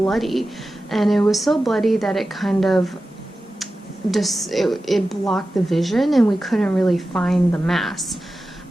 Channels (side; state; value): both; normal; correlation 0.94